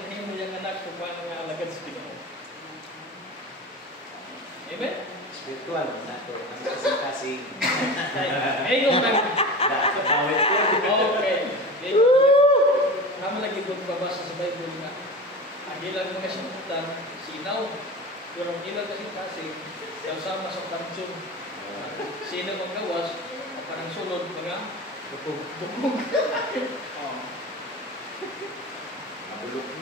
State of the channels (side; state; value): both; normal; correlation 0.30